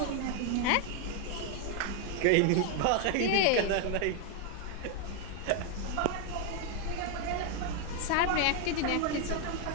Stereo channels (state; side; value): different; both; correlation 0.00